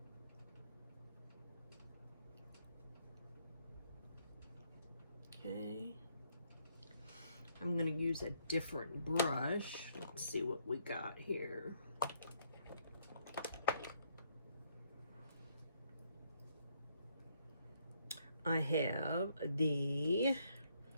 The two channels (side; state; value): both; inverted; correlation -0.71